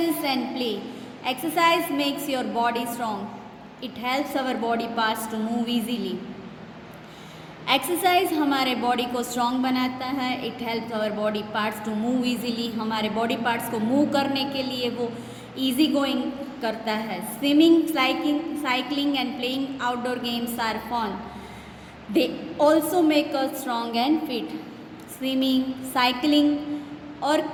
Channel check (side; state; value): both; identical; correlation 1.00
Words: and play, exercise makes your body strong, it helps our body parts to move easily. Exercise हमारे बॉडी को स्ट्रॉन्ग बनाता है, it helps our body parts to move easily, हमारे बॉडी पार्ट्स को मूव करने के लिए वो इजी गोइंग करता है। Swimming, cycling and playing outdoor games are fun, they also make us strong and fit. Swimming, cycling और